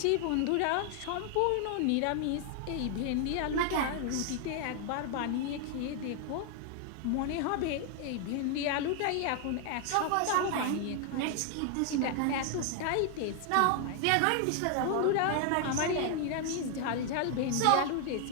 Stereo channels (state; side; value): different; both; correlation 0.00